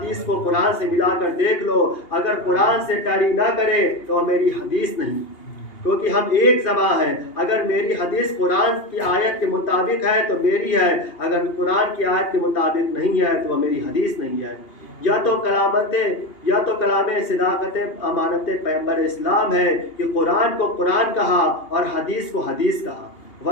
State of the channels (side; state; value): right; late; 2.8 ms